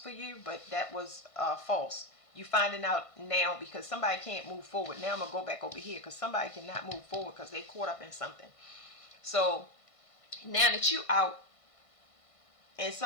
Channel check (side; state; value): right; late; 1.5 ms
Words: for you, but that was false. You finding out now because somebody can't move forward. Now I'm gonna go back over here because somebody cannot move forward because they caught up in something. So now that you out and